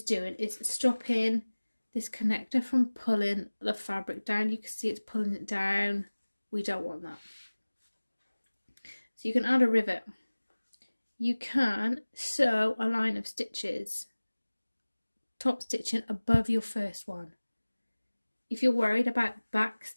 doing is stopping this connector from pulling the fabric down. You can see it's pulling it down. We don't want that. So you can add a rivet. You can sew a line of stitches, top stitching above your first one. If you're worried about back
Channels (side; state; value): both; inverted; correlation -1.00